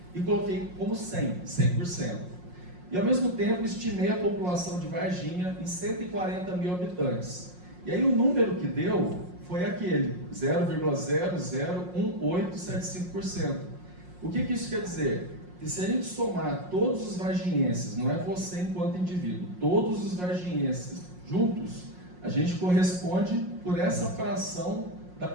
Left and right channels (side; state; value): left; late; 5.6 ms